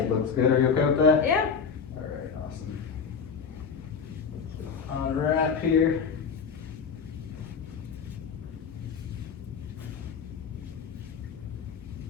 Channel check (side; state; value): right; quieter; 6.2 dB